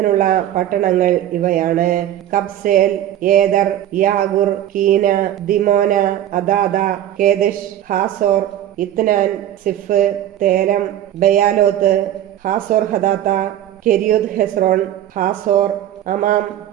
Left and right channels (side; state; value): left; quieter; 12.0 dB